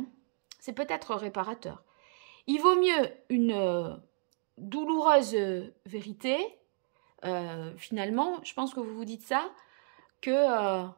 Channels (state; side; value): silent; left; 56 dB below the other